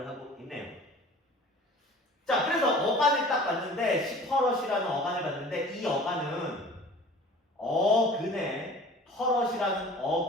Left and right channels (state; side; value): normal; both; correlation 0.45